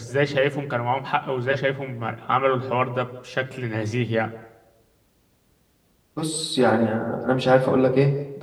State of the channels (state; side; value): identical; both; correlation 1.00